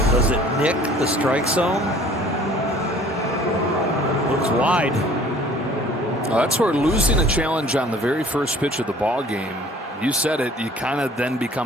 Does it nick the strike zone? Looks wide. Well, that's where losing a challenge on the very first pitch of the ball game, you said it, you kind of then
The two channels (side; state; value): both; normal; correlation 0.51